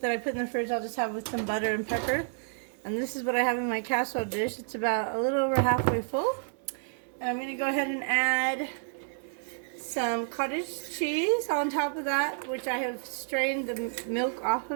that I put in the fridge, I'll just have with some butter and pepper. And this is what I have in my casserole dish. It's about a little over halfway full. And I'm going to go ahead and add some cottage cheese on top of that, which I have strained the milk off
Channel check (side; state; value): left; silent; digital silence